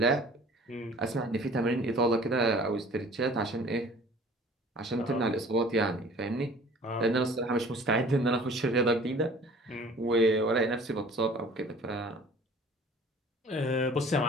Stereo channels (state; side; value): normal; both; correlation 0.49